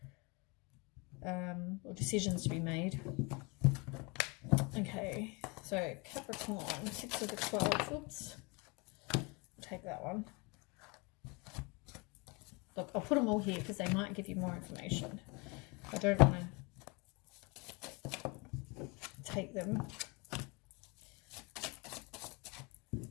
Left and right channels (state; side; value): quieter; right; 29.0 dB